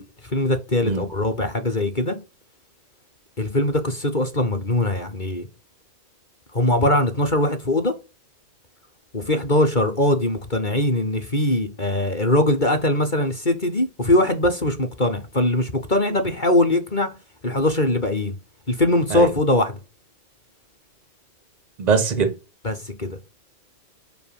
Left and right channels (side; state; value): right; late; 2.3 ms